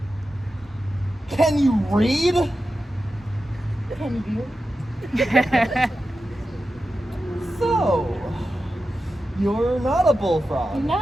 Can you read? Can you? So, you're not a bullfrog.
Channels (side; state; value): both; normal; correlation 0.91